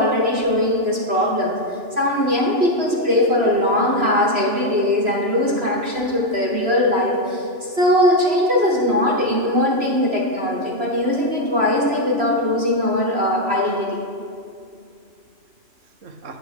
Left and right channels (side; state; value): left; late; 3.0 ms